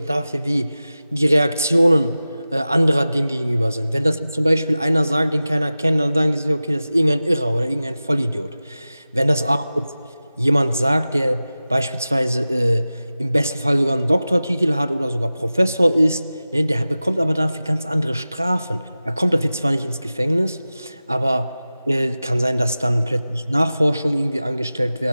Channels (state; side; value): inverted; both; correlation -0.95